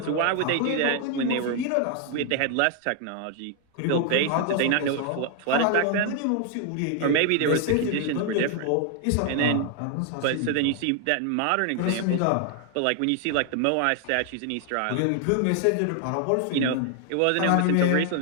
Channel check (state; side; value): different; both; correlation 0.00